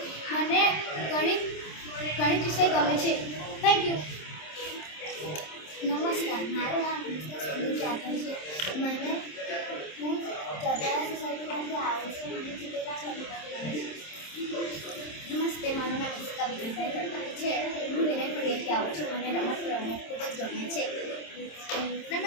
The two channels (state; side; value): late; right; 27 ms